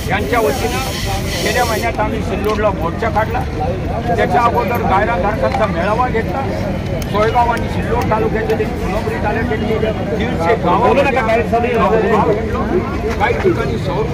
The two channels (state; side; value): identical; both; correlation 1.00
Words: यांच्या वतीने गेल्या महिन्यात आम्ही सिल्लोडला मोर्चा काढला. त्याच्या अगोदर गायरानधारकांचा मेळावा घेतला. सोयगाव आणि सिल्लोड तालुक्यातील फुलंब्री तालुक्यातील 150 गावांना भेटलो. काही ठिकाणी सौर